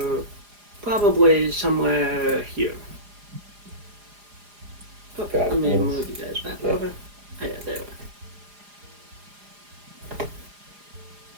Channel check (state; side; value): late; left; 4.9 ms